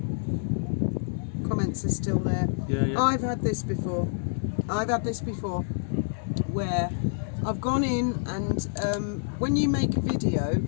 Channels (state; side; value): silent; right; 60 dB below the other